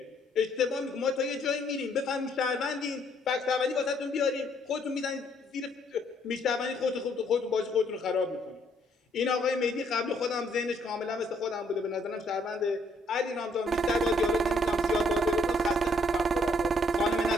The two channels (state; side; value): normal; both; correlation 0.68